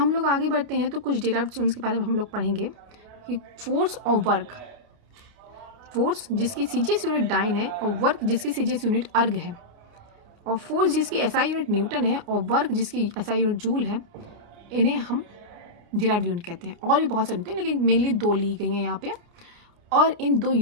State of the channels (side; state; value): left; late; 29 ms